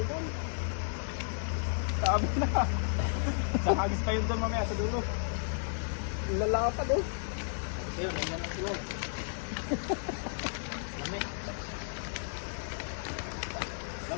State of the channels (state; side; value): silent; right; digital silence